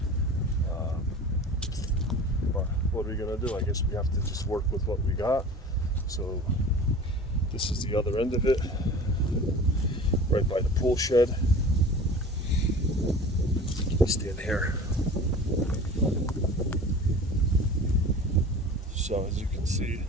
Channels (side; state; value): both; normal; correlation 0.39